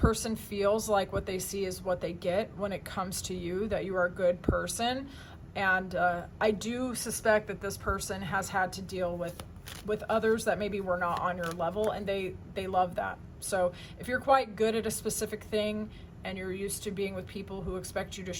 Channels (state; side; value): identical; both; correlation 1.00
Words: feels like what they see is what they get when it comes to you, that you are a good person. And I do suspect that this person has had to deal with others that maybe were not on your level, and they love that. So if you're quite good at a specific thing and you're used to being with people who expect you to